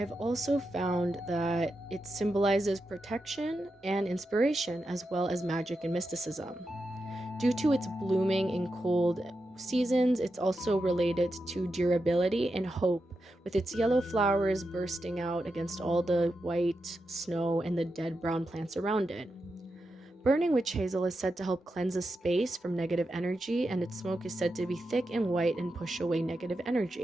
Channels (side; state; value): both; normal; correlation 0.88